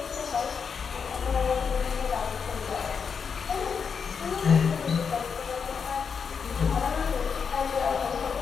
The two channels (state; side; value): quieter; right; 6.2 dB